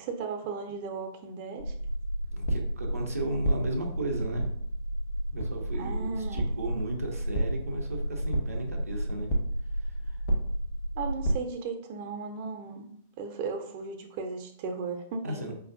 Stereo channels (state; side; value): inverted; both; correlation -0.77